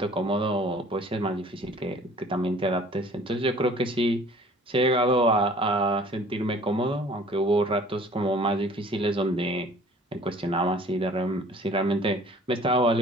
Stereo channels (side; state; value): both; normal; correlation 0.51